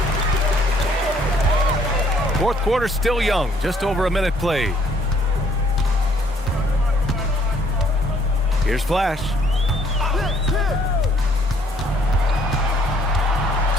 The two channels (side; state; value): both; normal; correlation 0.64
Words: Fourth quarter still young, just over a minute played. Here's Flash.